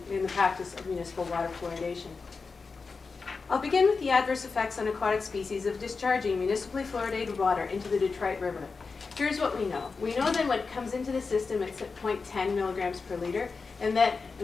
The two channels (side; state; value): right; quieter; 4.6 dB